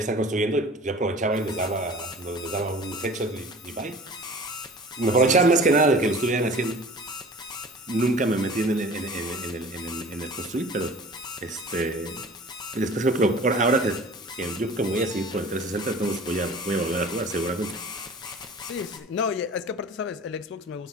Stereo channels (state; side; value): normal; both; correlation 0.43